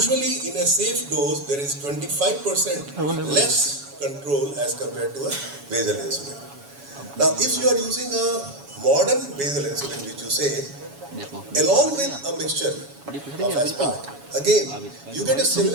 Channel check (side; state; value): left; late; 7.1 ms